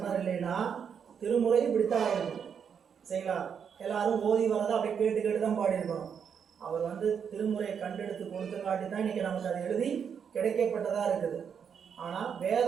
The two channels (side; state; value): left; quieter; 7.3 dB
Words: இல்லைன்னா திருமுறை இப்படித்தான் ஆயிருக்கும். சரிங்களா? எல்லாரும் ஓதி வரதை அப்படி கேட்டு தான் பாடியிருக்கணும். அவர் வந்து திருமுறையை கண்டெடுத்து கொடுத்தங்காட்டி தான் இன்னைக்கு நமக்கு அது எழுதி கிடைக்கப்பட்டதா இருக்குது. ஆனால்